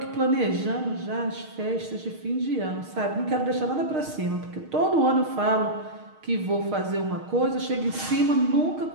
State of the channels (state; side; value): late; left; 6.4 ms